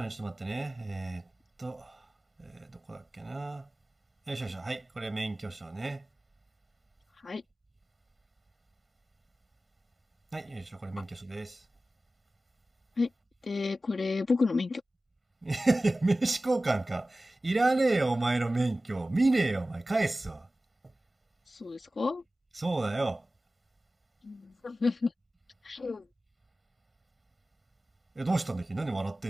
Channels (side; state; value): both; normal; correlation 0.96